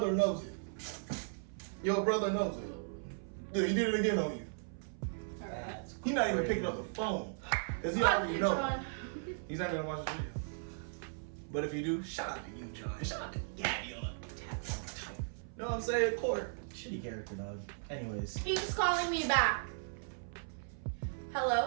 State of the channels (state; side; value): silent; left; 53 dB below the other